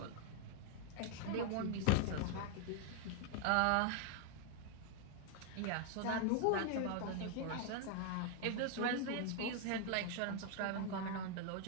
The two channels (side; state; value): both; different; correlation 0.01